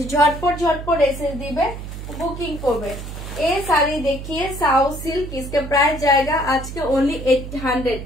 ঝটপট ঝটপট এসএস দিবে, বুকিং করবে। এই শাড়ি দেখিয়ে সাউথ সিল্ক, इसके प्राइस जाएगा आज के ओनली 800,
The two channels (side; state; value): right; noise; hum, 9 dB below the sound